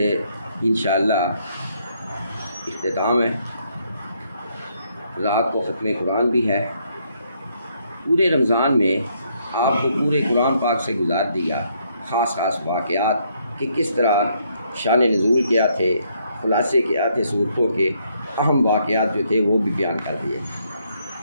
انشاءاللہ اختتام ہے، رات کو ختم قرآن بھی ہے۔ پورے رمضان میں آپ کو پورے قرآن پاک سے گزار دیا خاص واقعات کہ کس طرح شان نزول کیا تھے، خلاصے کیا تھے، صورتوں کے اہم واقعات جو تھے وہ بھی بیان کر دیے۔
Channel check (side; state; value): both; inverted; correlation -0.72